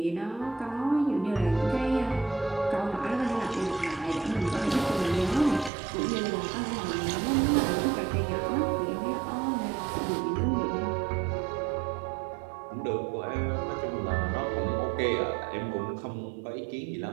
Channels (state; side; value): drops out; left; at 5.7 s